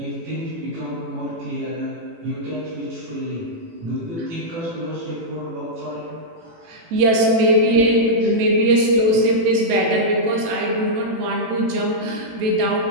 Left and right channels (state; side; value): late; left; 18 ms